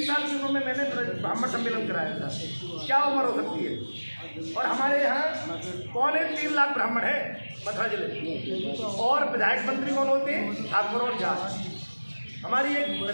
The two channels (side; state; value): both; inverted; correlation -1.00